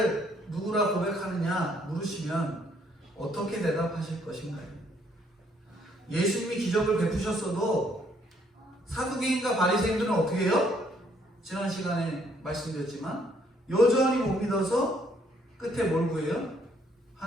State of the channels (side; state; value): both; normal; correlation 0.67